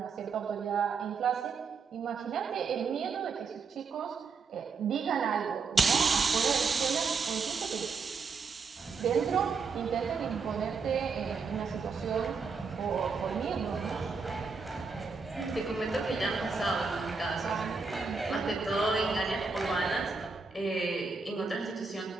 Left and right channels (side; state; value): left; quieter; 4.9 dB